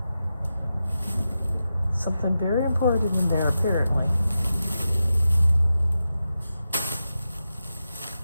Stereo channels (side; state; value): both; inverted; correlation -0.90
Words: Something very important in there, apparently.